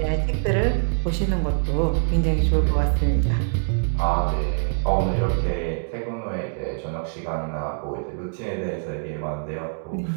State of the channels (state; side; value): silent; left; digital silence